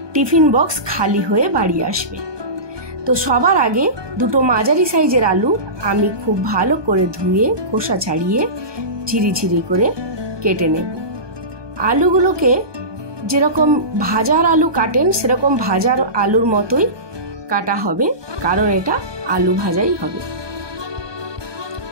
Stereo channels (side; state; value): left; late; 1.2 ms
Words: টিফিন বক্স খালি হয়ে বাড়ি আসবে। তো সবার আগে দুটো মাঝারি সাইজের আলু আমি খুব ভালো করে ধুয়ে খোসা ছাড়িয়ে ঝিরিঝিরি করে কেটে নেব। আলুগুলোকে যেরকম ভাজার আলু কাটেন সেরকম ভাজার আলুর মতোই কাটা হবে, কারণ এটা আলু ভাজাই হবে।